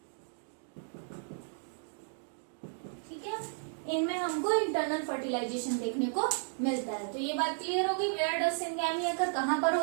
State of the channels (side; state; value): left; silent; digital silence